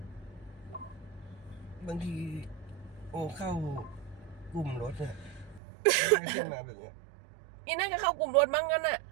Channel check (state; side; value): drops out; left; at 5.6 s